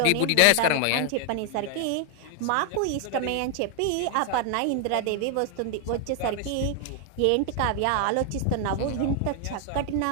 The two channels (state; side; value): different; both; correlation 0.00